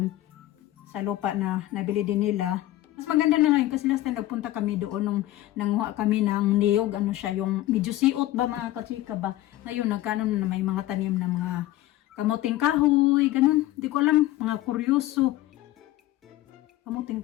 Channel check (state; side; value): quieter; right; 15.3 dB